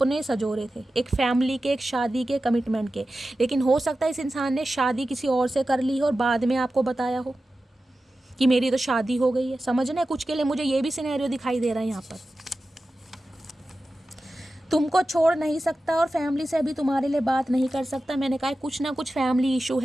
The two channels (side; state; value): both; normal; correlation 0.93